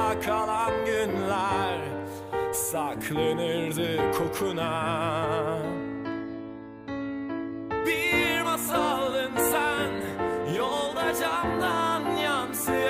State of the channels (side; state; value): both; identical; correlation 1.00